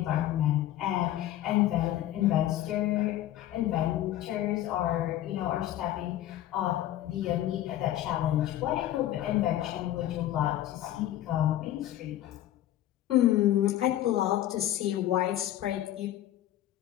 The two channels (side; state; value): right; quieter; 13.2 dB